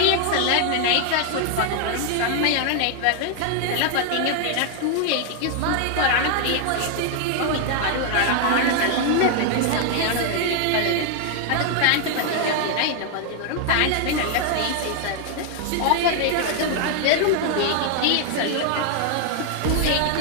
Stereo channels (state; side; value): different; both; correlation 0.00